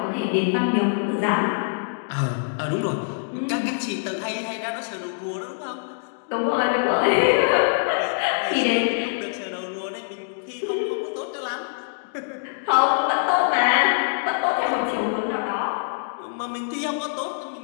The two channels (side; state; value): right; silent; digital silence